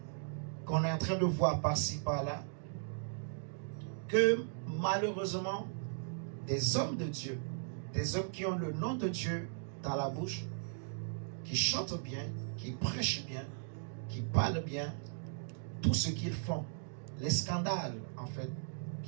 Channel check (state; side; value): silent; left; digital silence